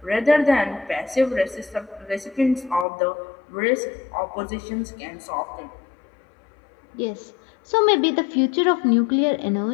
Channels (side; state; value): right; drops out; at 2.9 s